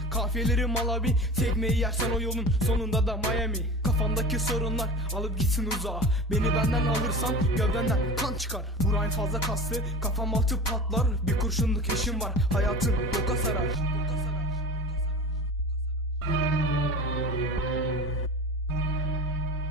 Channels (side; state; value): both; normal; correlation 0.33